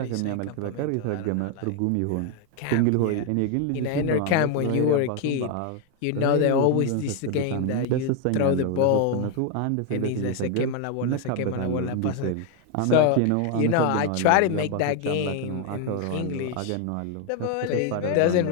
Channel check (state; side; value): different; both; correlation 0.01